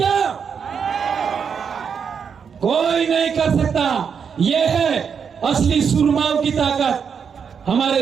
कोई नहीं कर सकता। यह है असली सुरमाओं की ताकत। हमारे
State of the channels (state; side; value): quieter; left; 6.7 dB